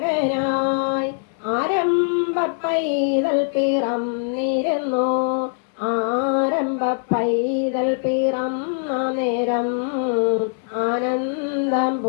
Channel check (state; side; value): silent; right; 61 dB below the other